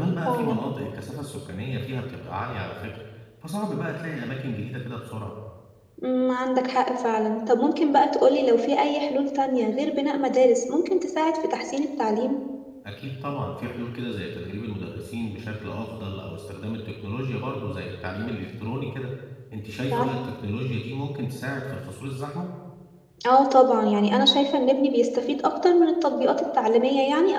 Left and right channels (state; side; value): identical; both; correlation 1.00